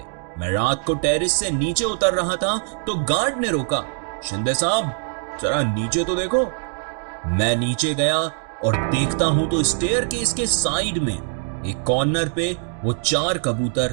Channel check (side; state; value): left; silent; 56 dB below the other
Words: मैं रात को टेरेस से नीचे उतर रहा था तो गार्ड ने रोका। शिंदे साहब, जरा नीचे तो देखो। मैं नीचे गया और देखता हूं तो स्टेयर केस के साइड में एक कॉर्नर पे वो 4